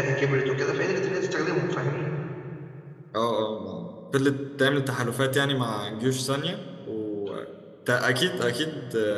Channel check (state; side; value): identical; both; correlation 1.00